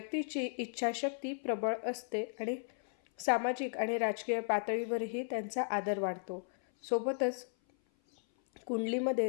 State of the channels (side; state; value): right; silent; 54 dB below the other